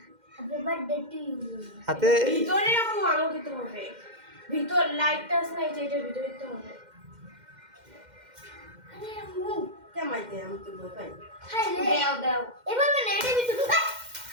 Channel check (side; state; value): left; late; 2.1 ms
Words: happy birthday to you হাতে ভিতরে আম্মু আলো দিতে হবে ভিতর লাইটটা আছে না এটার ভিতরে দিতে হবে আরে আম্মু কেমাই দে আমি তো ভয় পাই হাই রে দাও দাও এভাবে না এটা ভিতরে